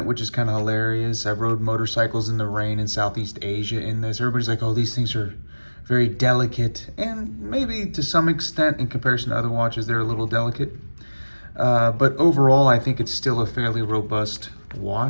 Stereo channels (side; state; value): both; inverted; correlation -1.00